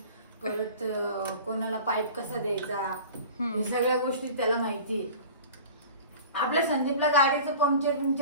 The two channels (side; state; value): both; inverted; correlation -0.39